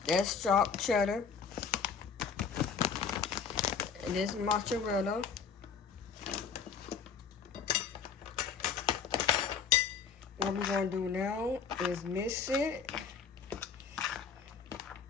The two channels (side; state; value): right; quieter; 6.3 dB